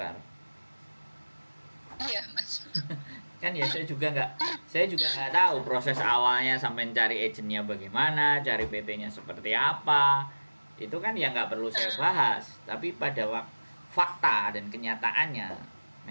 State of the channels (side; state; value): both; inverted; correlation -1.00